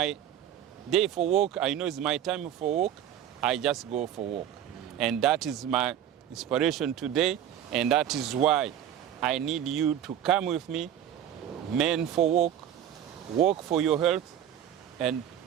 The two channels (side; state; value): left; quieter; 10.4 dB